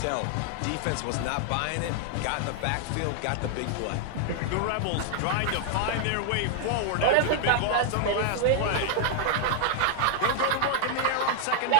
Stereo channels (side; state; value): both; different; correlation 0.00